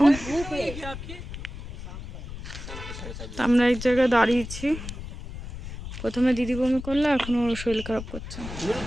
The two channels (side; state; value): left; noise; rumble, 10 dB below the sound